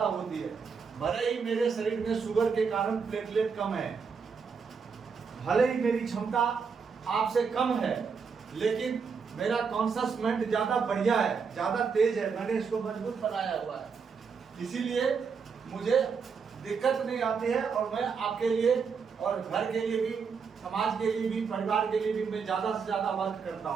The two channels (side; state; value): left; quieter; 5.7 dB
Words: होती है। भले ही मेरे शरीर में शुगर के कारण प्लेटलेट कम है, भले ही मेरी क्षमता आपसे कम है, लेकिन मेरा कॉन्शियस माइंड ज्यादा बढ़िया है, ज्यादा तेज है, मैंने इसको मजबूत बनाया हुआ है, इसीलिए मुझे दिक्कत नहीं आती है। और मैं आपके लिए और घर के लिए भी, समाज के लिए भी, परिवार के लिए भी मैं ज्यादा से ज्यादा वर्क करता